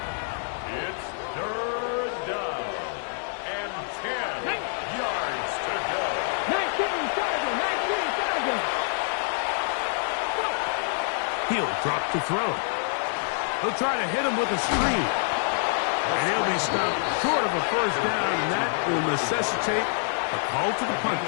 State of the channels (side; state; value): right; silent; digital silence